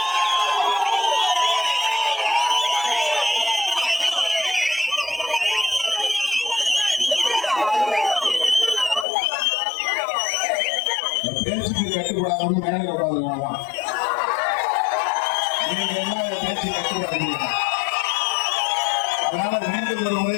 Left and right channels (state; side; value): drops out; right; at 9.1 s